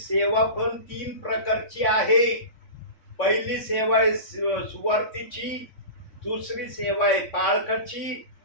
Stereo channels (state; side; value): late; right; 3.5 ms